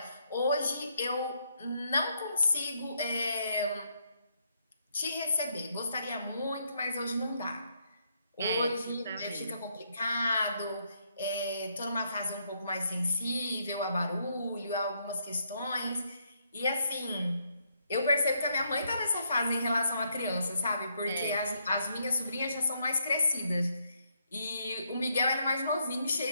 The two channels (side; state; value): both; inverted; correlation -0.75